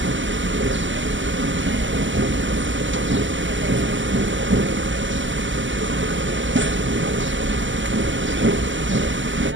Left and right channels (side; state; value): left; late; 0.55 ms